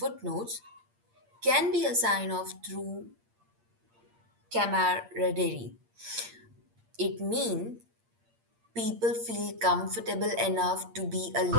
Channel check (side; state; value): left; late; 8.6 ms